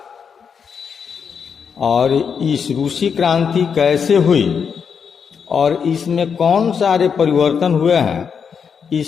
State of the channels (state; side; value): quieter; right; 6.6 dB